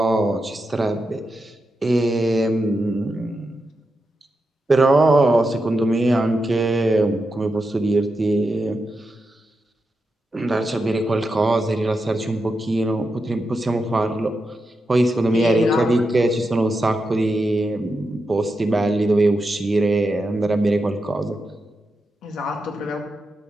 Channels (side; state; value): both; normal; correlation 0.87